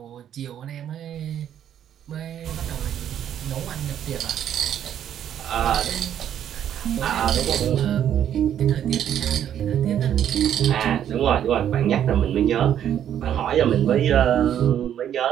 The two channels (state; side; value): quieter; left; 10.0 dB